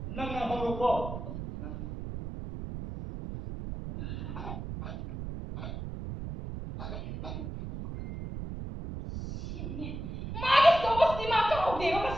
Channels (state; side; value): noise; right; rumble, 7 dB below the sound